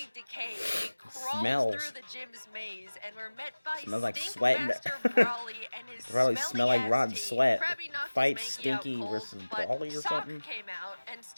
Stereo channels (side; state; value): both; inverted; correlation -1.00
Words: decay, we crawled Smells. through the gym's maze and were met by Smells like Stink sweat. Master Brawly and his Probably smelly smell like ass rotten team. sweat. Krabby knocked Fight his Mankey Stinky out cold, versus but Brawly or Sock something? came out and